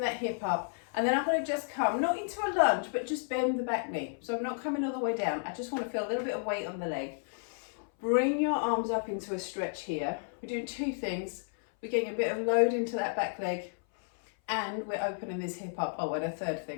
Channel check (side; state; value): right; silent; 56 dB below the other